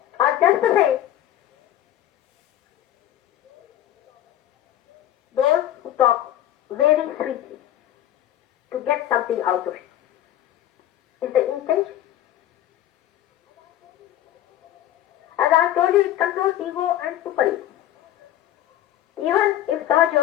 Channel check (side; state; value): right; quieter; 12.4 dB